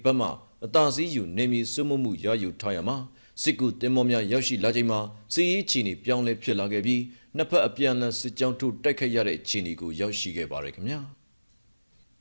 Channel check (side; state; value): both; inverted; correlation -1.00